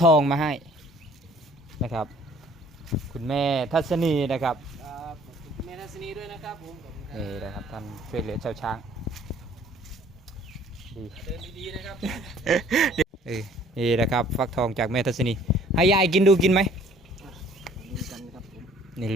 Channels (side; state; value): both; normal; correlation 0.56